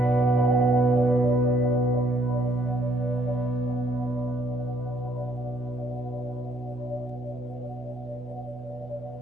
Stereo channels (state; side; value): normal; both; correlation 0.66